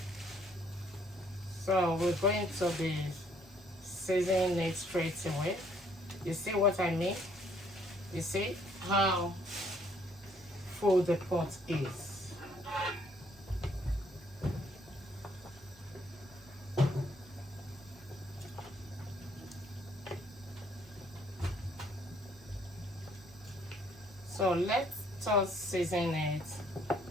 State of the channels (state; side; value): normal; both; correlation 0.65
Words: So we're going to be seasoning it straight away. You see what I mean? You see how full the pot is. So let us season it